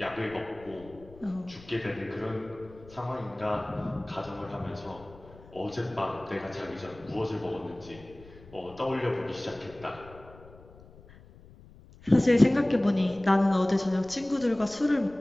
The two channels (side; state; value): left; noise; rumble, 21 dB below the sound